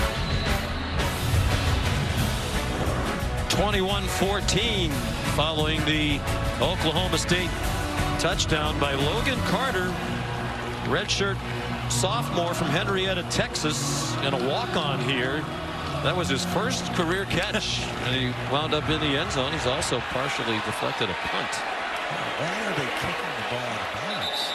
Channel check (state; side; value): identical; both; correlation 1.00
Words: (21-14) following the Oklahoma State touchdown by Logan Carter, redshirt sophomore from Henrietta, Texas, and a walk-on here. That was his first career catch, and he wound up in the end zone. He's also partially deflected a punt. Why are they kicking the ball out of bounds?